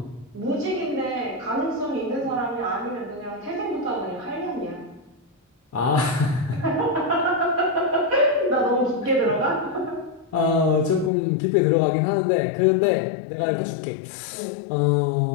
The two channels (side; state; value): right; drops out; at 11.1 s